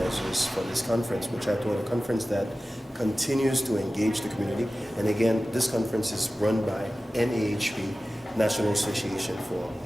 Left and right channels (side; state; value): both; normal; correlation 0.96